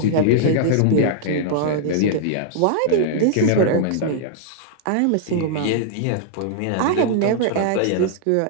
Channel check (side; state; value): both; different; correlation -0.01